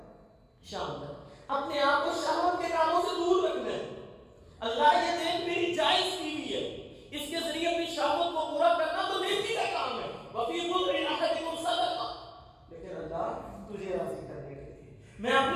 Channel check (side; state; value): both; identical; correlation 1.00